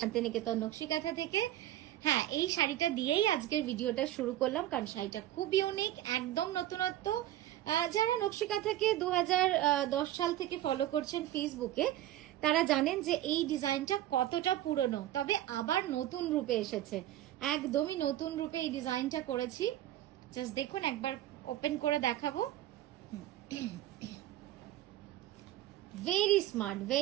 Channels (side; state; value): left; quieter; 13.6 dB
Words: শান্তিনিকেতন নকশিকাঁথা থেকে। হ্যাঁ, এই শাড়িটা দিয়েই আজকের ভিডিওটা শুরু করলাম, কারণ শাড়িটা খুব ইউনিক, একদম নতুনত্ব। যারা নকশিকাঁথাকে 2010 সাল থেকে ফলো করছেন ফেসবুকে, তারা জানেন যে এই ডিজাইনটা কতটা পুরনো, তবে আবার নতুন রূপে এসেছে। একদমই নতুন রূপে এই ডিজাইনটা করেছি। জাস্ট দেখুন, একবার ওপেন করে দেখাবো। ভেরি স্মার্ট,